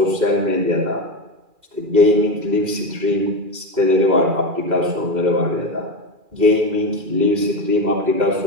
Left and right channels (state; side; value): late; left; 2.4 ms